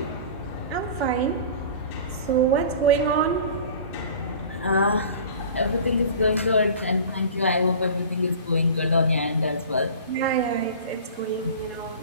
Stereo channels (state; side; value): inverted; both; correlation -0.40